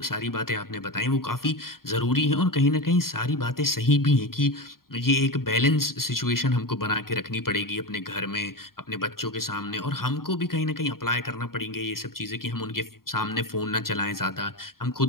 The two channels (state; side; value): late; right; 0.92 ms